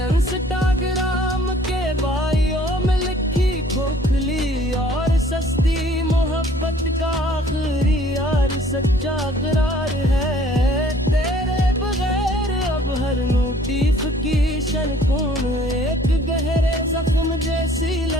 के बायों में लिखी खोखली और सस्ती मोहब्बत का आखिरी यार सच्चा करार है। तेरे बगैर अब हर नोटिफिकेशन कौन एक गहरे जख्म जैसी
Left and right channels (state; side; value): normal; both; correlation 0.56